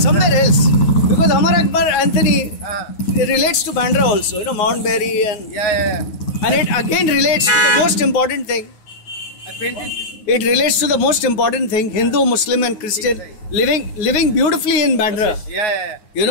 else. Because Amar Akbar Anthony it relates to Bandra also. Mount Berry and. Yeah. And it again relates to the most important thing. I painted. It relates to the most important thing: Hindu, Muslim, and Christian living beautifully in Bandra. Yeah.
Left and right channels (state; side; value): late; right; 9.5 ms